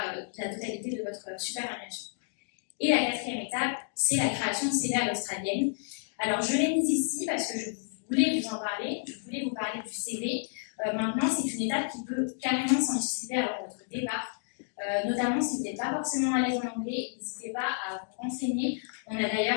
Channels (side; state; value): right; silent; digital silence